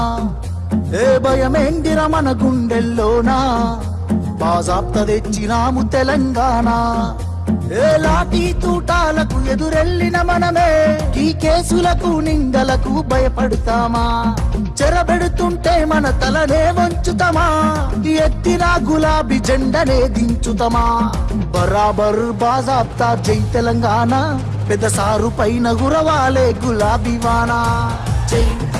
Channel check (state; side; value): identical; both; correlation 1.00